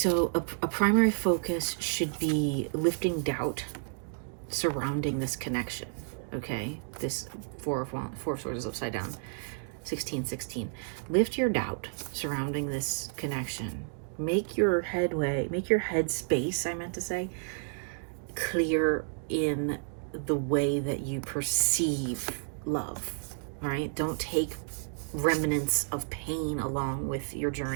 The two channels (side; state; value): left; silent; digital silence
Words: a primary focus should be lifting doubt surrounding this connection, okay? This Four of Swords is upside down, 16-16. Lift your doubt surrounding this connection. Make your head space, I meant to say, clear in the way that you perceive love, all right? Don't take remnants of pain along with your